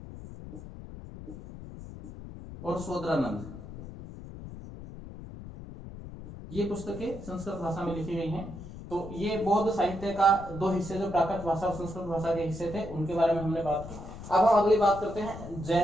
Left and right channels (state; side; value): noise; left; rumble, 12 dB below the sound